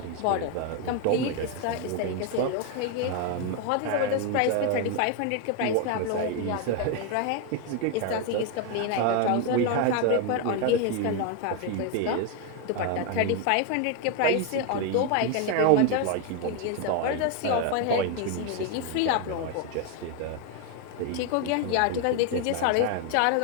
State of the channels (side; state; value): both; different; correlation 0.01